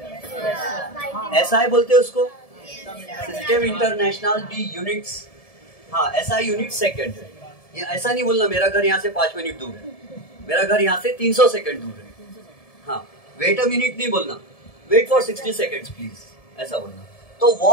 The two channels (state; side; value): late; right; 1.7 ms